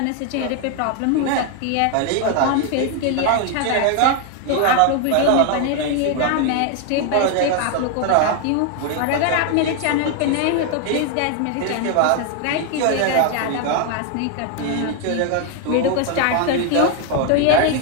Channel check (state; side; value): different; both; correlation 0.01